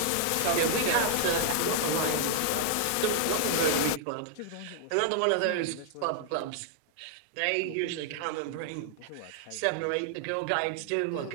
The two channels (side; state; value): both; different; correlation -0.01